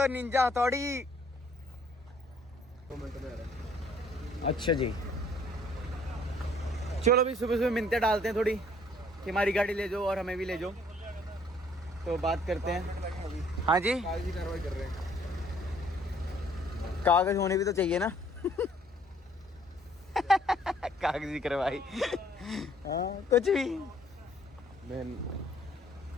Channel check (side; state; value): both; normal; correlation 0.61